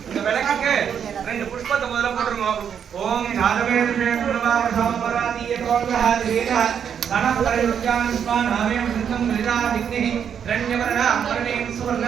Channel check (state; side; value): quieter; left; 8.0 dB